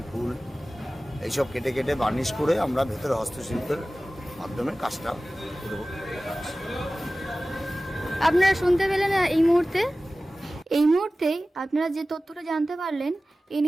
ফুল, এইসব কেটে কেটে বার্নিশ করে আমরা ভেতরে হস্তশিল্পের মাধ্যমে কাজটা করব। আপনারা শুনতে পেলেন এই মুহূর্তে আপনারা যে তথ্যটা জানতে পারলেন,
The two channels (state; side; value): normal; both; correlation 0.96